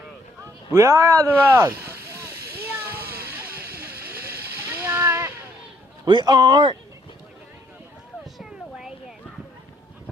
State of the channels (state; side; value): normal; both; correlation 0.67